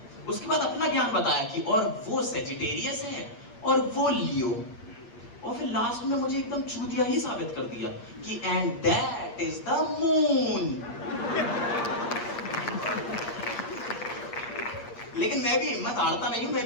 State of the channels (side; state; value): right; late; 8.5 ms